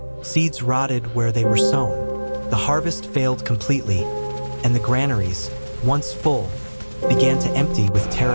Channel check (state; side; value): inverted; both; correlation -1.00